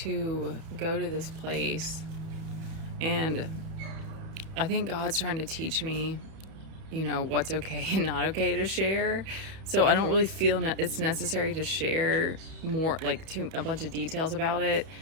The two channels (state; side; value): late; left; 31 ms